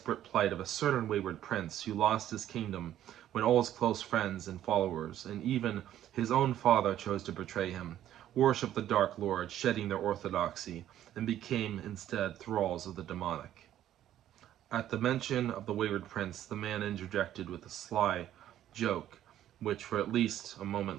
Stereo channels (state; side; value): quieter; left; 12.0 dB